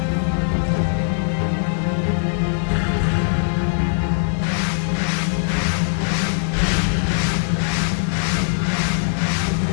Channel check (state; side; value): silent; right; digital silence